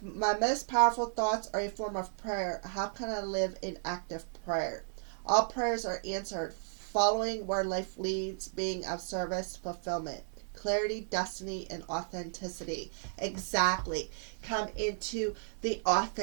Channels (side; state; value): left; silent; digital silence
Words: my most powerful thoughts are a form of prayer, how can I live in active prayer? All prayers are answered, following where life leads, being of service, fulfillment, clarity, destiny, and authenticity. Exactly. Come into the